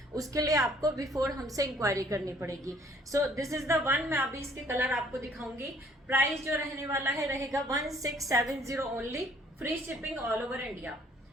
उसके लिए आपको बिफोर हमसे इंक्वायरी करनी पड़ेगी। So this is the one. मैं अभी इसके कलर आपको दिखाऊंगी। प्राइस जो रहने वाला है रहेगा 1670 only, free shipping all over India.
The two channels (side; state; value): both; normal; correlation 0.60